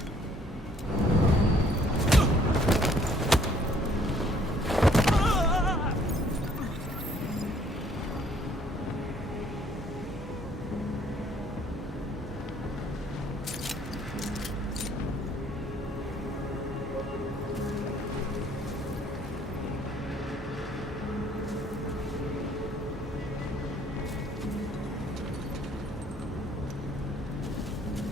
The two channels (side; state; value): both; normal; correlation 0.62